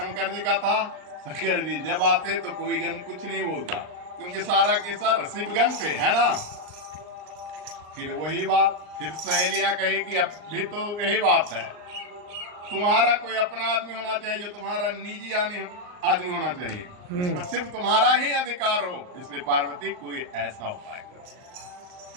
जी का था। शंकर जी जब आते तो कोई गन कुछ नहीं बोलता, क्योंकि सारा के सर शिव गन पे है ना। फिर वही बात, फिर सहेलियां कही कि अब भी तो यही बात है, तुम्हारा कोई अपना आदमी होना चाहिए, जो तुम्हारा निजी आदमी होना चाहिए, इसमें सिर्फ तुम्हारा ही अधिकार हो। इसलिए पार्वती कोई ऐसा उपाय करो।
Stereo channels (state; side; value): late; left; 39 ms